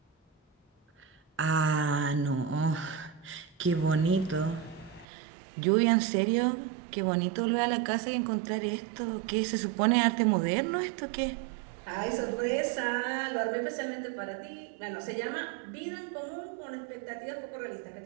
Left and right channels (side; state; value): left; drops out; at 5.1 s